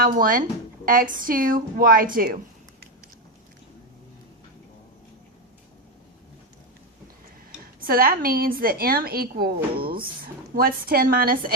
x2, y2. So that means that m equals, what's 10 minus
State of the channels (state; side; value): normal; both; correlation 0.10